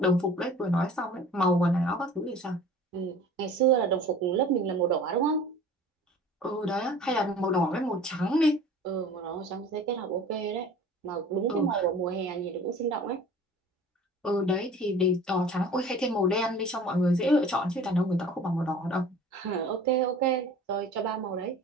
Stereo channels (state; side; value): normal; both; correlation 0.45